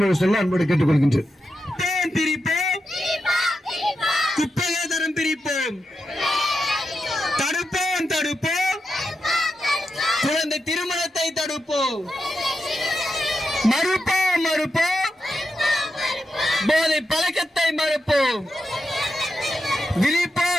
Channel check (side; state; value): both; normal; correlation 0.87